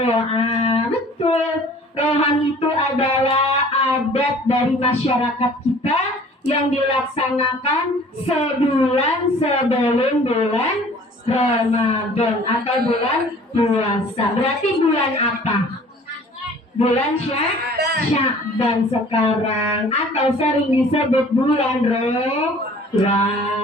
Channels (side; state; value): both; normal; correlation 0.50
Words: betul. Rewahan itu adalah adat dari masyarakat kita yang dilaksanakan sebulan sebelum bulan Ramadan atau bulan puasa. Berarti bulan apa? Bulan Sya'ban sekarang, atau sering disebut bulan